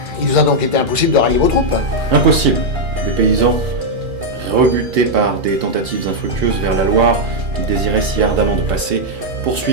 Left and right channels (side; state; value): left; late; 2.5 ms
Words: il vous a donc été impossible de rallier vos troupes? Impossible. Les paysans, rebutés par des tentatives infructueuses vers la Loire, ils désiraient si ardemment de passer,